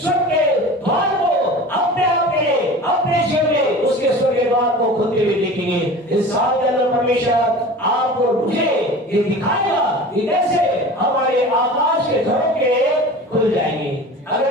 के द्वार को अपने जीवन में उसके स्वर्ग के द्वार को खुलते हुए देखेंगे। इस साल के अंदर परमेश्वर आपको मुझे ये दिखाएगा कि कैसे हमारे आकाश के झरोखे खुल जाएंगे।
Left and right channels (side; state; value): both; normal; correlation 0.37